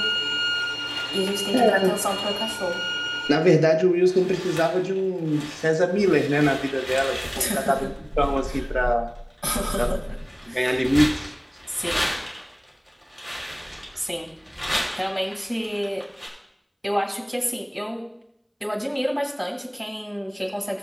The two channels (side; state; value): both; identical; correlation 1.00